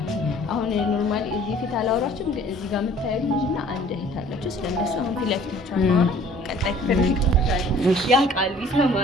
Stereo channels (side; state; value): both; normal; correlation 0.53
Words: አሁን ኖርማሊ እዚህ ፊት አላወራችሁም፣ ግን እዚህ ጋር የምታዩት ልጅና አንድ እህት አላችሁ። ስለነሱ አሁን ፊት ለፊታቸው አናወራ። ቀጣይ ክፍል ያውቃል፣